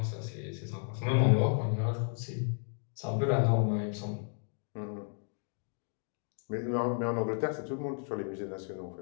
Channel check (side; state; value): right; silent; 56 dB below the other